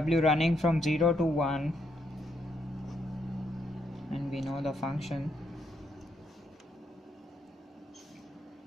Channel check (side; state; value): both; normal; correlation 0.77